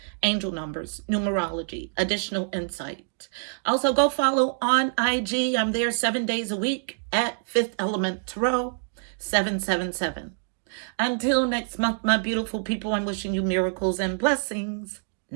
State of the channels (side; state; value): left; silent; 61 dB below the other